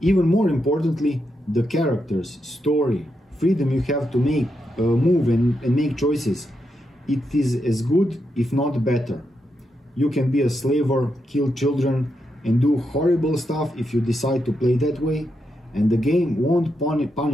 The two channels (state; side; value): normal; both; correlation 0.84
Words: more importantly, the characters, story, freedom you have to make, move and make choices. It is as good, if not better. You can be a slaver, kill children, and do horrible stuff if you decide to play that way, and the game won't